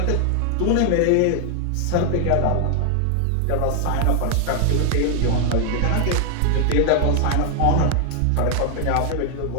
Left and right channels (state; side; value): different; both; correlation 0.00